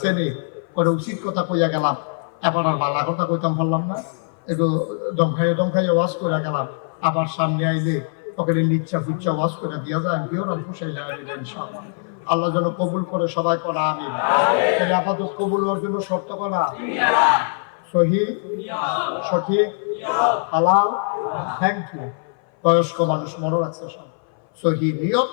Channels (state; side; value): silent; right; 59 dB below the other